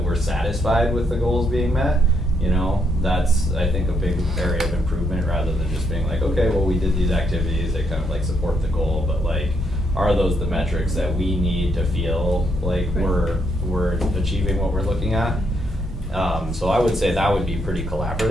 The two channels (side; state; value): both; normal; correlation 0.76